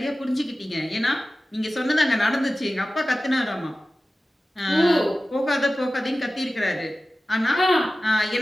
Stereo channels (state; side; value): normal; both; correlation 0.95